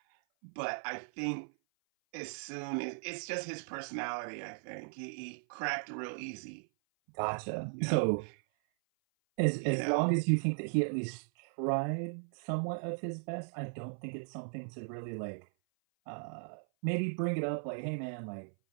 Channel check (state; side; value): silent; left; 53 dB below the other